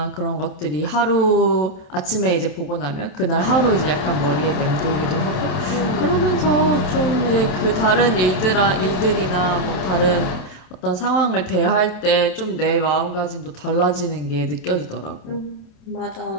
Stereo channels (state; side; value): late; right; 27 ms